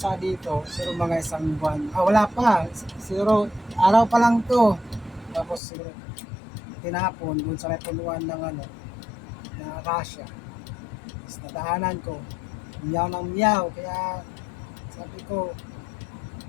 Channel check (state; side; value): drops out; right; at 5.6 s